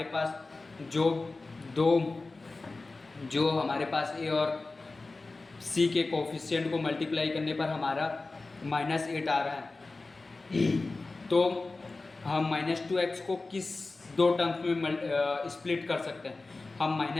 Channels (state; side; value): quieter; right; 3.5 dB